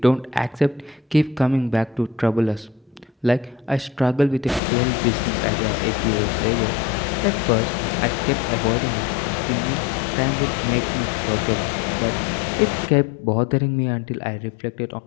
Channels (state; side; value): drops out; right; at 4.6 s